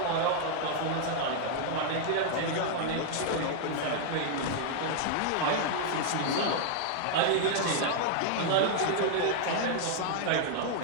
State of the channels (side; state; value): both; different; correlation 0.00